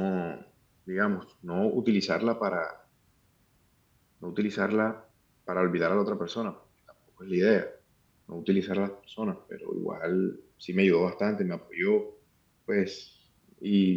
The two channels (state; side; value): identical; both; correlation 1.00